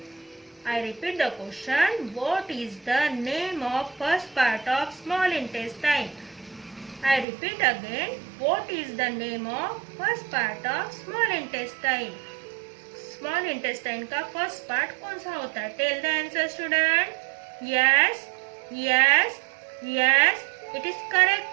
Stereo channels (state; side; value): drops out; left; at 7.2 s